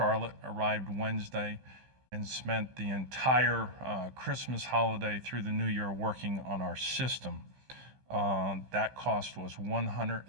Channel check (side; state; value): left; late; 15 ms